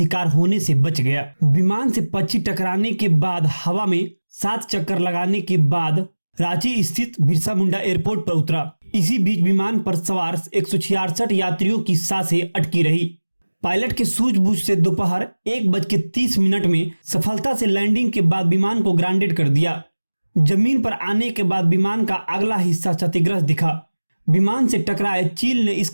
होने से बच गया। विमान से पक्षी टकराने के बाद हवा में 7 चक्कर लगाने के बाद रांची स्थित बिरसा मुंडा एयरपोर्ट पर उतरा। इसी बीच विमान पर सवार 166 यात्रियों की सांसें अटकी रही। पायलट के सूझबूझ से दोपहर 1:30 में सफलता से लैंडिंग के बाद विमान को ग्राउंडेड कर दिया। जमीन पर आने के बाद विमान का अगला हिस्सा क्षतिग्रस्त दिखा। विमान से टकराए चील ने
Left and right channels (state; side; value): inverted; both; correlation -1.00